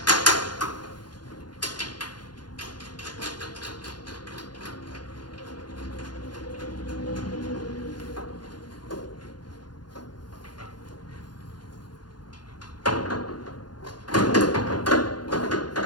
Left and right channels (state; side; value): late; right; 0.71 ms